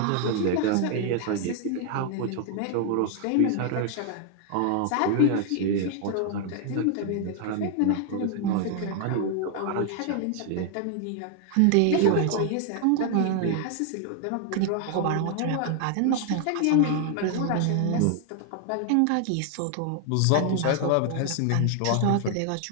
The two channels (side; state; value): both; different; correlation 0.00